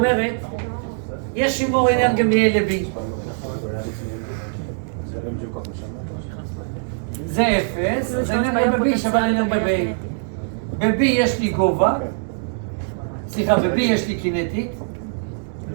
יש שימור אנרגיה מ-A ל-B. זה אפס, זה אנרגיה ב-B שווה לאנרגיה ב-A. ב-B יש לי גובה, סליחה, ב-B יש לי קינטית,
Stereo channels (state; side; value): silent; left; digital silence